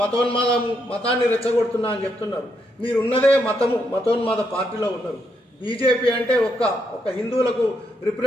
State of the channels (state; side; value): normal; both; correlation 0.78